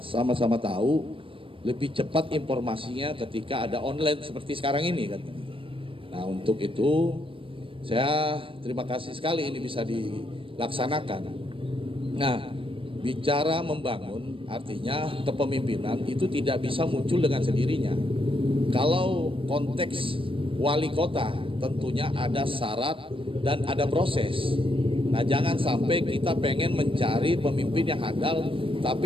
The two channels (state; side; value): late; left; 0.26 ms